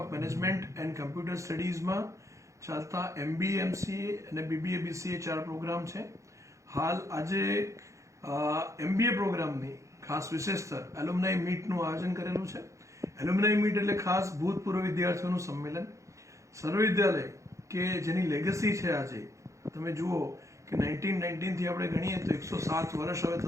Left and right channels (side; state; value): left; late; 0.15 ms